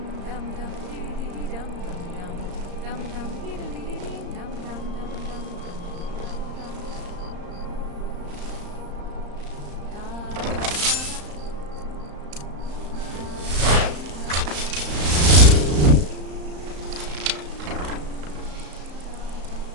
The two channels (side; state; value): left; late; 35 ms